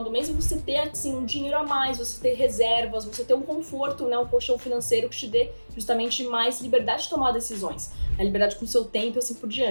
do mês e você ter, assim, um dinheiro a mais, você ter reservas, você ter um conforto, né, um colchão financeiro que te dê justamente mais liberdade de tomar decisões, a liberdade com o seu tempo e assim por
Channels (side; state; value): both; inverted; correlation -1.00